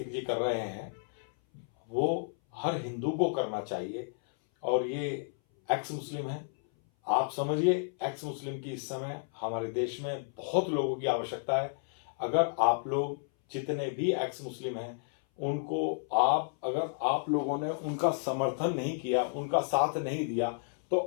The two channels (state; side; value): silent; right; 57 dB below the other